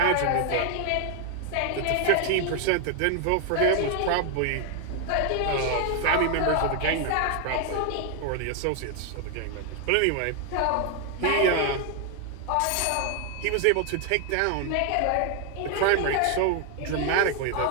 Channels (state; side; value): different; both; correlation 0.00